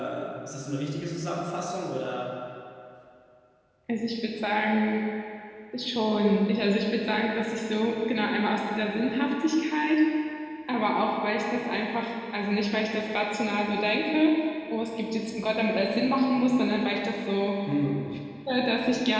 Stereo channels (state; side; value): identical; both; correlation 1.00